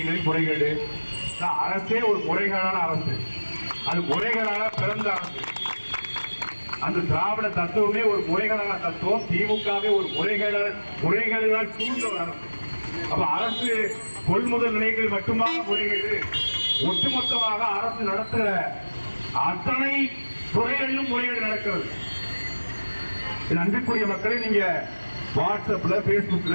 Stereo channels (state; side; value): inverted; both; correlation -1.00